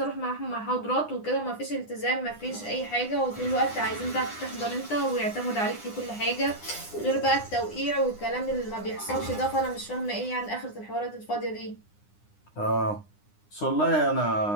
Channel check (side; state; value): right; late; 9.8 ms